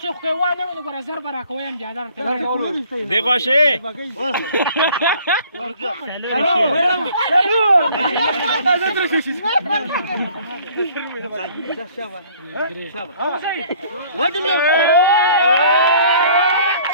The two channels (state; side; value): inverted; both; correlation -0.55